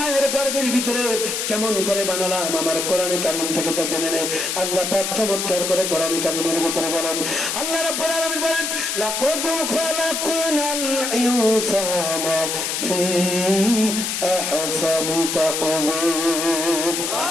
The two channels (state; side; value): noise; left; hiss, 2 dB below the sound